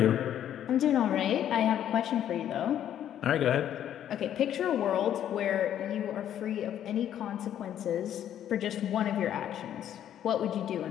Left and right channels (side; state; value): right; quieter; 10.6 dB